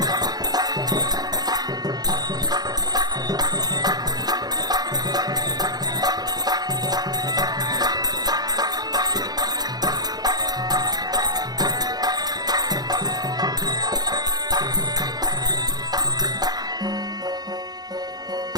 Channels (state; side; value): late; left; 0.19 ms